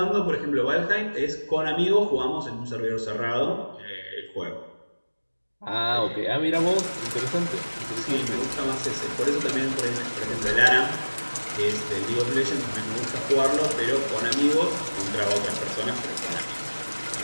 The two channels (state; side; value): inverted; both; correlation -1.00